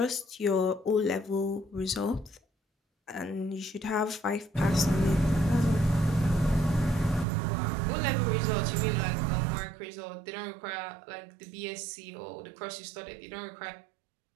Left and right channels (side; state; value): left; drops out; at 7.2 s